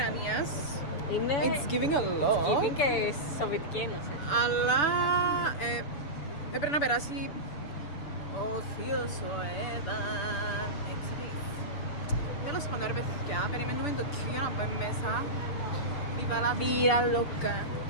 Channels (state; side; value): late; right; 6.9 ms